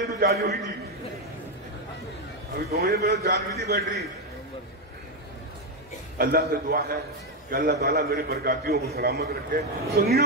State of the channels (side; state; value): both; normal; correlation 0.06